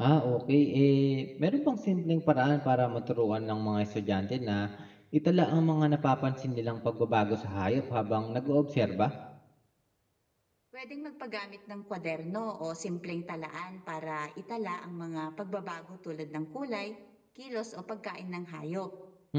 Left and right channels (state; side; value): identical; both; correlation 1.00